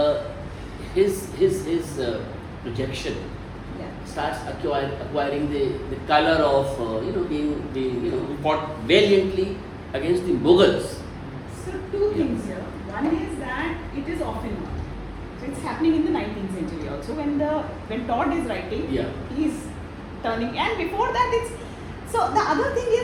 his projection starts acquiring the color of being fought valiantly against the Mughals? So two things here. One is that it is often not. So it's happening in the 19th century also. When Todd is writing, he's turning, and before that it's. So the other thing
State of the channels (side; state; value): both; identical; correlation 1.00